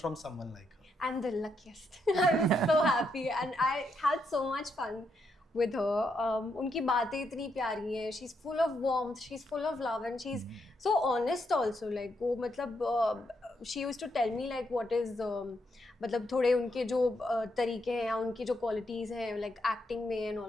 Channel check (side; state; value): both; normal; correlation 0.79